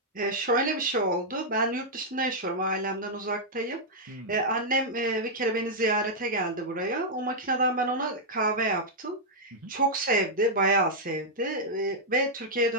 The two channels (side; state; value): both; normal; correlation -0.06